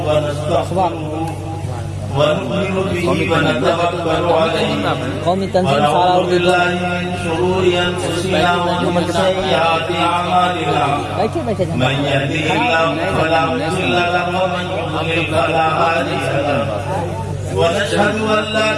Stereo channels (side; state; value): both; identical; correlation 1.00